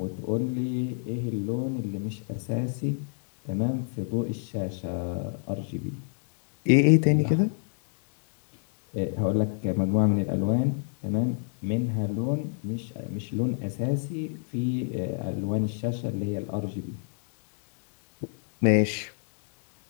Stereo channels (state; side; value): silent; right; digital silence